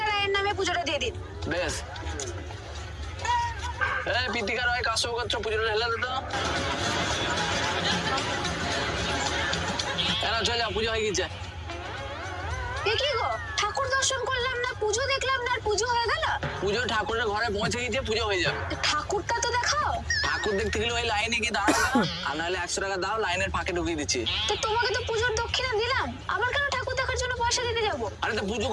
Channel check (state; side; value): identical; both; correlation 1.00